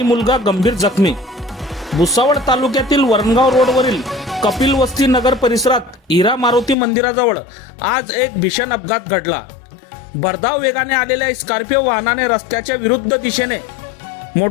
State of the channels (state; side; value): drops out; right; at 6.8 s